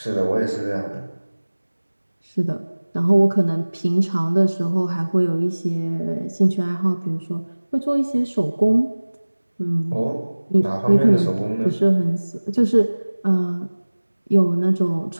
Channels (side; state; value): both; inverted; correlation -1.00